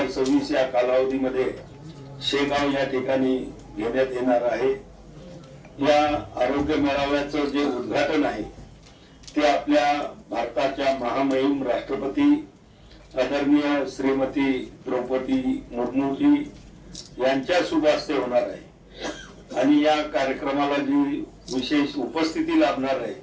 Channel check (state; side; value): identical; both; correlation 1.00